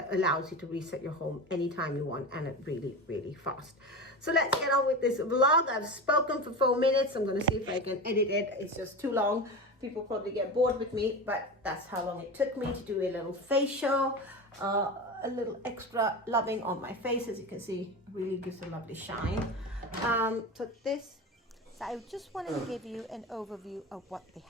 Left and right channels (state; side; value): normal; both; correlation 0.26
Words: allows you to reset your home anytime you want, and it really, really fast. So let's get on with this vlog. I've spoken for 4 minutes. I'm going to see if I can edit it. It's just too long. People probably get bored with me, but that's how long it took me to do a little facial, a little extra loving on my face. As you can see, really gives a lovely shine. So I just wanted to give you an overview of what the